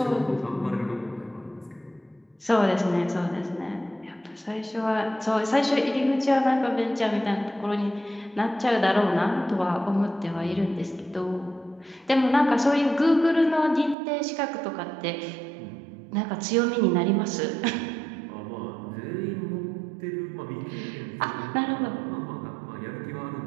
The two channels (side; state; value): left; drops out; at 14.0 s